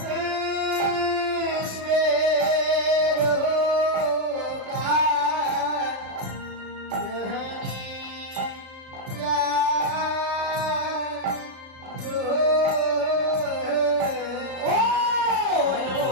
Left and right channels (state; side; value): late; left; 36 ms